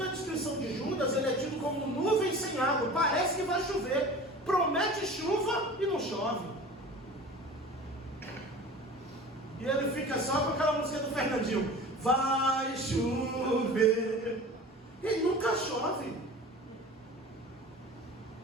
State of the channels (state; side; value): normal; both; correlation 0.39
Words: descrição de Judas ele é tido como nuvem sem água. Parece que vai chover. Promete chuva e não chove. E ele fica só com aquela música do Fernandinho: vai chover. E nunca chove.